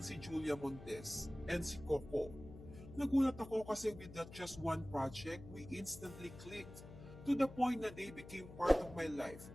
si Julia Montes and si Coco. Nagulat ako kasi with that just one project, we instantly clicked. To the point na they became part of my life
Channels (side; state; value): left; noise; hum, 15 dB below the sound